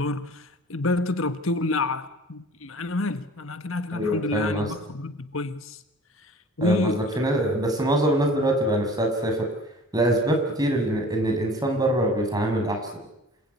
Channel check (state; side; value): normal; both; correlation 0.45